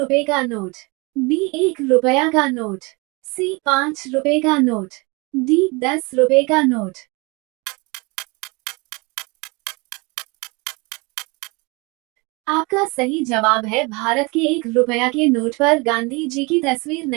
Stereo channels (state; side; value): quieter; left; 27.6 dB